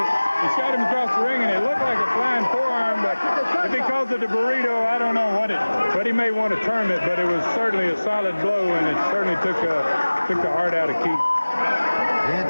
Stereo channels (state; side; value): inverted; both; correlation -1.00